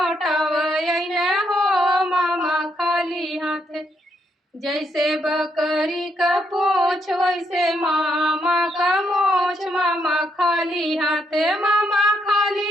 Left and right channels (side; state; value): both; normal; correlation 0.76